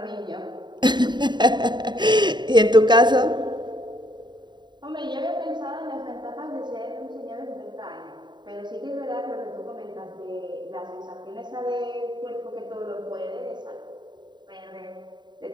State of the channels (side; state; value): left; late; 0.22 ms